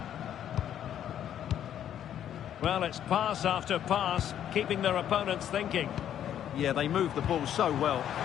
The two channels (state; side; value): quieter; right; 10.3 dB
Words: Well, it's pass after pass, keeping their opponents thinking. Yeah, they moved the ball so well.